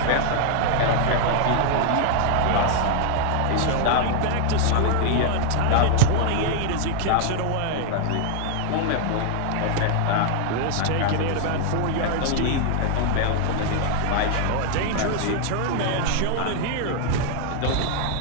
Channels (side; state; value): both; different; correlation 0.00